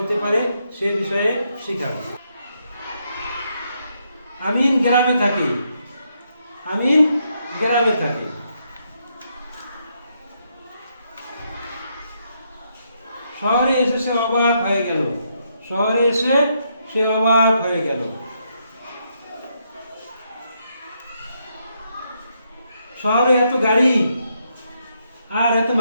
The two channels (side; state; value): both; inverted; correlation -0.78